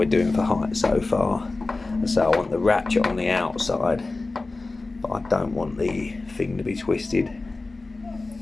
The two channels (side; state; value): right; quieter; 3.4 dB